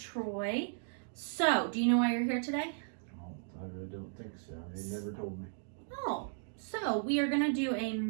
So, do you know why you're here today? Oh, I really don't think so. They never told me. Oh, so we are going to do a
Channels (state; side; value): silent; left; digital silence